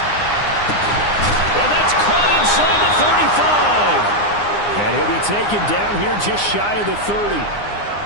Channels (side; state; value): right; late; 9.7 ms